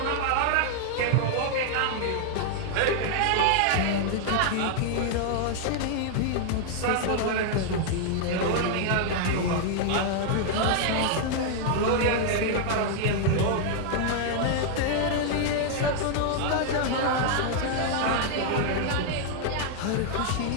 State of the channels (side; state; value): both; different; correlation 0.00